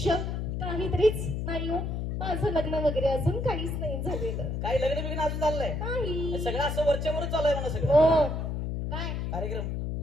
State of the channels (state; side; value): noise; left; hum, 2 dB below the sound